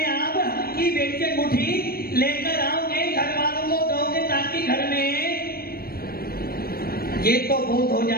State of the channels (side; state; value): right; late; 0.44 ms